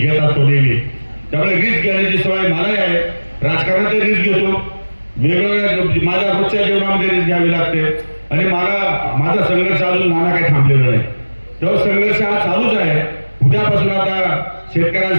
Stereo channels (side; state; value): both; inverted; correlation -1.00